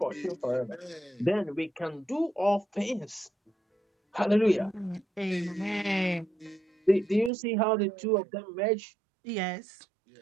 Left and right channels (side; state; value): left; drops out; at 7.3 s